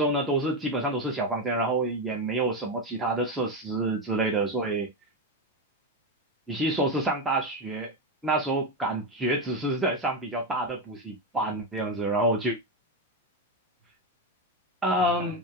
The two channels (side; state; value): both; normal; correlation 0.10